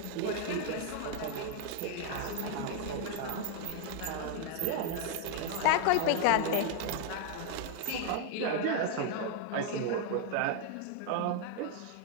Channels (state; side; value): different; both; correlation 0.00